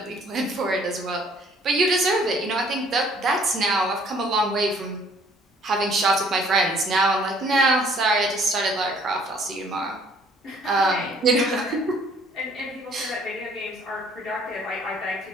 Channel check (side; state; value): both; normal; correlation 0.59